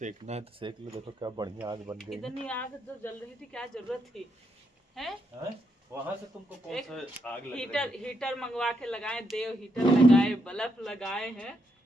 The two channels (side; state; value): both; normal; correlation 0.79